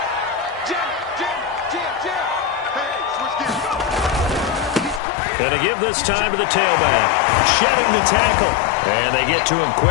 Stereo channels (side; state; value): right; drops out; at 5.0 s